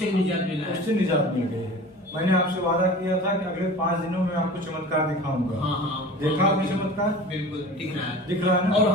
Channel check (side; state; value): both; normal; correlation 0.38